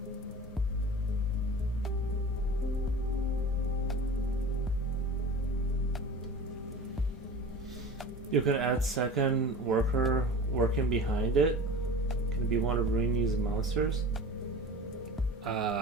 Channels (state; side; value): normal; both; correlation 0.36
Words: You could add second worker working behind it. Can it be one of Rainey's monsters?